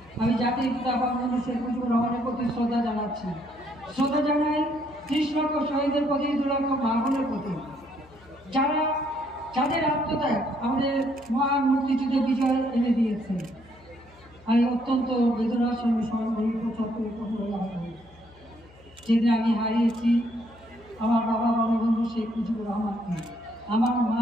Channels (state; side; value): noise; left; hum, 26 dB below the sound